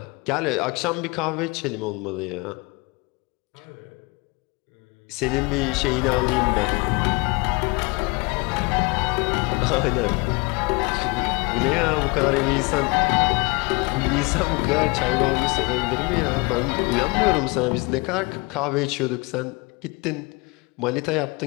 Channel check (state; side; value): quieter; right; 27.7 dB